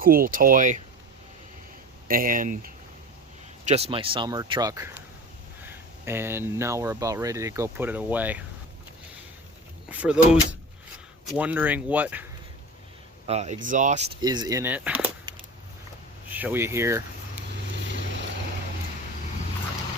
toy and just my summer truck, and now we're about ready to go put it away. For those wondering what exhaust is in it, show you here.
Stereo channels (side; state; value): both; normal; correlation 0.35